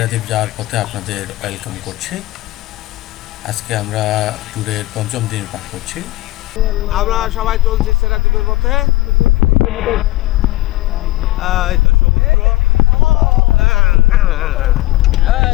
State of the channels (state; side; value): quieter; right; 18.0 dB